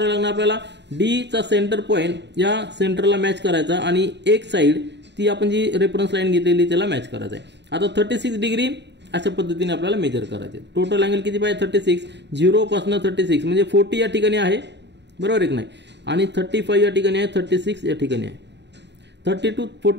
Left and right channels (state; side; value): late; left; 0.51 ms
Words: लागणार आपल्याला, डी चा सेंटर पॉईंट या सेंटरला मॅच करायचा आणि एक साइड ती आपण जी रेफरन्स लाईन घेतलेली त्याला मॅच करायचं आहे. आता 36 डिग्री अशा पद्धतीने आपल्याला मेजर करायचे. टोटल अँगल किती पाहिजे, 36. 0 पासून 36 म्हणजे 40 या ठिकाणी आहे, बरोबर आहे की नाही. आणि 35 या ठिकाणी आहे, 36 या ठिकाणी आहे. 30 to